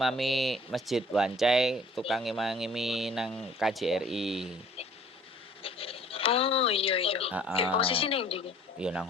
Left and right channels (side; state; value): both; normal; correlation 0.53